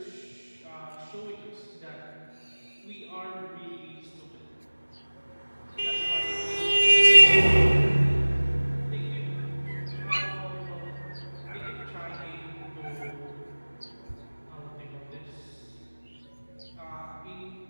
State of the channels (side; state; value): both; inverted; correlation -1.00